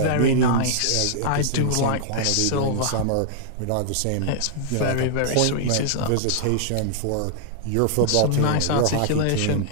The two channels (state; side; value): different; both; correlation -0.01